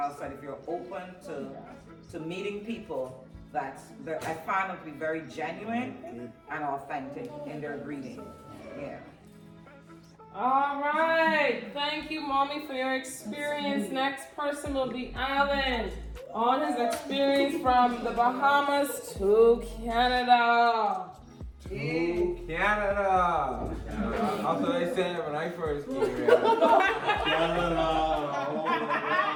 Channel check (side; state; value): both; identical; correlation 1.00